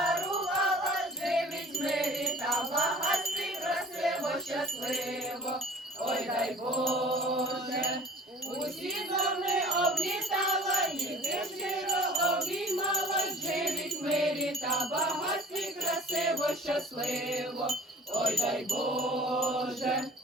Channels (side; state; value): both; normal; correlation 0.47